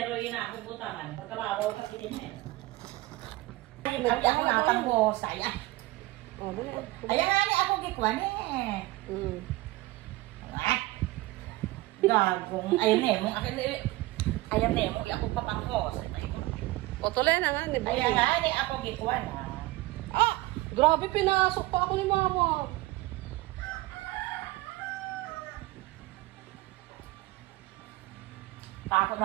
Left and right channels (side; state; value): left; quieter; 19.5 dB